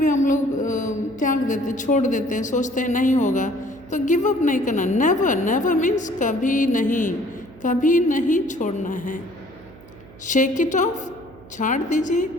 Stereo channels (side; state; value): right; noise; hum, 22 dB below the sound